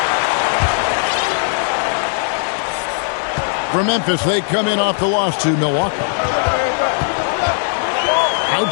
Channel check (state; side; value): silent; right; digital silence